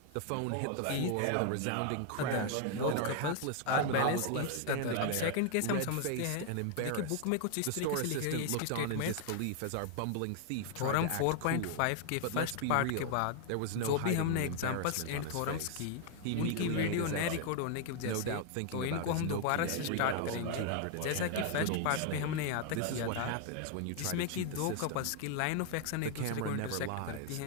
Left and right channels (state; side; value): different; both; correlation 0.00